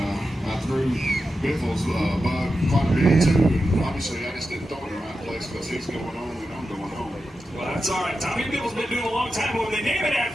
I threw Biffle's bug quite a bit too. And obviously, I just didn't throw it in the right place because he's going home and I'm going home. Well, that's all right. Tommy Biffle's been doing a long time, but when they name it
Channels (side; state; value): both; normal; correlation 0.90